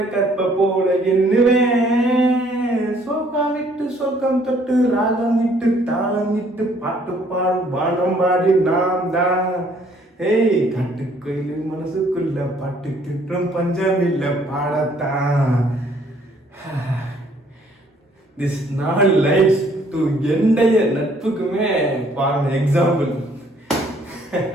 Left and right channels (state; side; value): normal; both; correlation 0.62